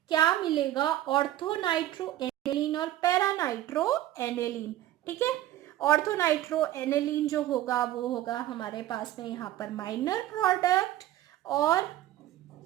क्या मिलेगा, ऑर्थोनाइट्रो एनिलीन और पैरानाइट्रो एनिलीन, ठीक है। ऑर्थोनाइट्रो एनिलीन जो होगा वो होगा हमारे पास में यहाँ पर माइनर प्रोडक्ट, और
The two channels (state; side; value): quieter; left; 13.8 dB